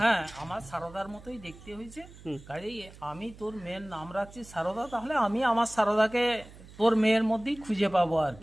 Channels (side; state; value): right; noise; hum, 19 dB below the sound